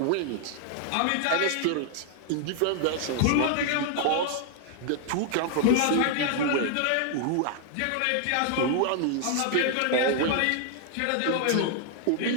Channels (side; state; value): both; different; correlation 0.00